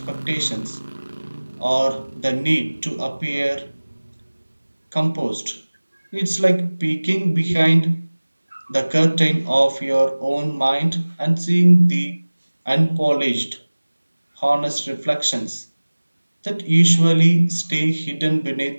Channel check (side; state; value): both; inverted; correlation -1.00